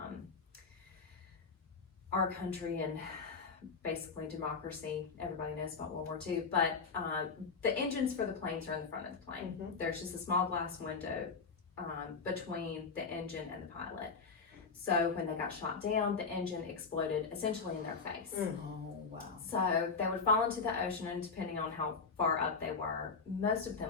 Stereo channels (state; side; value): quieter; right; 4.9 dB